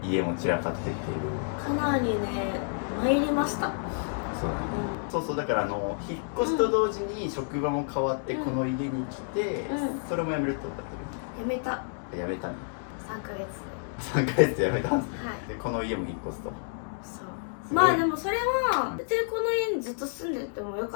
家も散らかってっていうかなりね参りました。そうだね、そうそう、だから引っ越しと同時に職場も変わってこの家に来て、それも辞めるってことだったやめた。辞めたね。3ヶ月3ヶ月で辞めたんですね、はい、でこの家も引っ越すと。そうまあでもそれは別にこの家にずっと住んでてもよ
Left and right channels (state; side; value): silent; right; digital silence